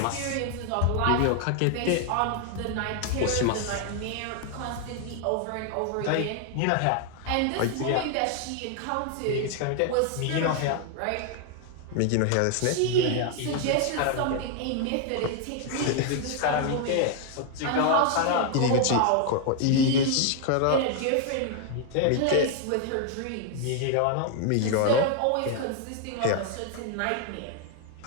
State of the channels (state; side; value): different; both; correlation 0.00